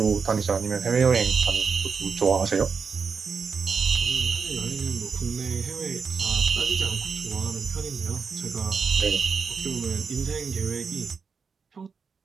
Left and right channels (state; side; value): quieter; left; 5.6 dB